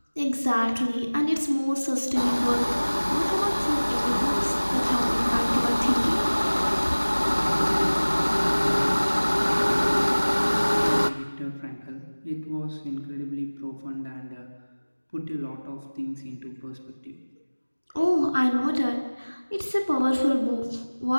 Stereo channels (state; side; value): inverted; both; correlation -1.00